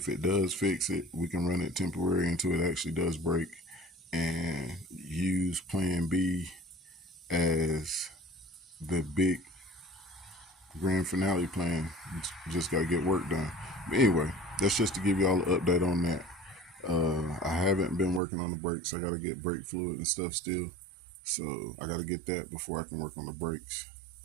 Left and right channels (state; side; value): drops out; left; at 18.2 s